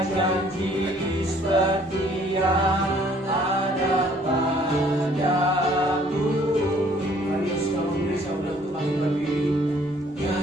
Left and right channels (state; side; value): normal; both; correlation 0.60